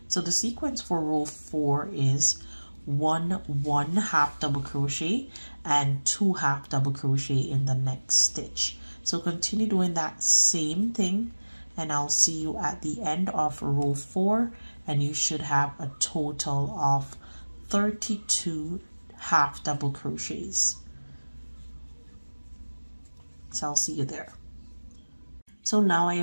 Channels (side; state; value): both; inverted; correlation -1.00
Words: So the sequence for row 4 is 1 half double crochet and 2 half double crochet in the next stitch. So continue doing that same thing, and I'll see you at the end of row 4, and you should have a total of 32 half double crochets. So I'll see you there. So now I